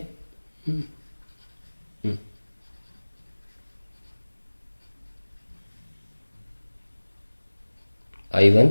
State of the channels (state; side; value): inverted; both; correlation -1.00